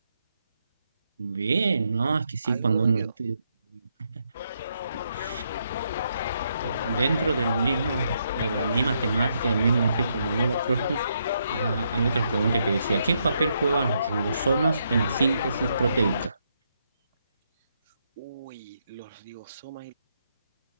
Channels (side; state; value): both; inverted; correlation -0.78